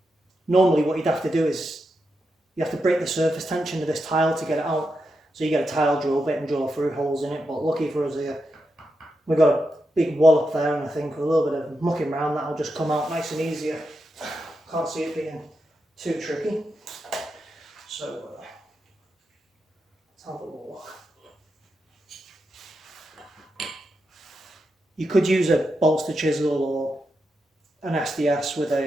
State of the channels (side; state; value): both; normal; correlation 0.86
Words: normally what you'd have to do is you have to break the surface tension of this tile to get it out. So you get a tile drill bit and drill through holes in it. But lucky for us here, we've got a big wall up there, and I think with a little bit of mucking around, that'll just come out nice and easy. Can't see it being too tricky. So let's have a look. You could use a bolster chisel or an SDS with